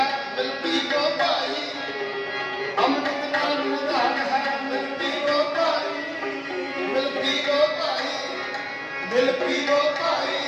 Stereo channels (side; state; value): both; identical; correlation 1.00